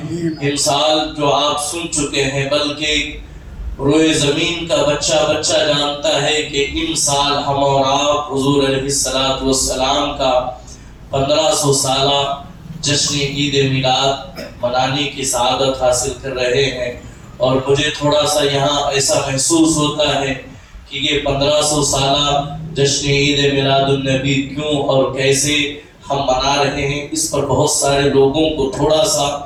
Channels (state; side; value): identical; both; correlation 1.00